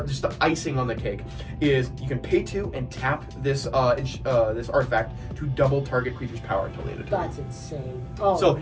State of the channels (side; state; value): both; identical; correlation 1.00